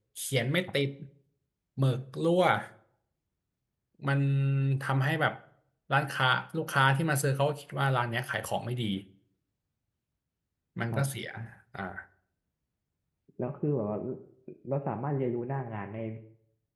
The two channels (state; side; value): identical; both; correlation 1.00